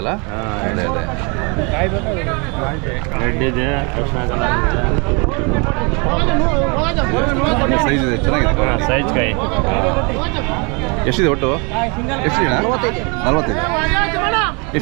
ರೆಡ್ ಇದೆ, ಸೈಜ್ ಇದೆ, ಚೆನ್ನಾಗಿದೆ. ಸೈಜ್ ಕಾಯಿ ಎಷ್ಟಿದೆ ಒಟ್ಟು? ಎಷ್ಟಿದೆ? 45.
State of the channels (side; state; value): left; quieter; 31.9 dB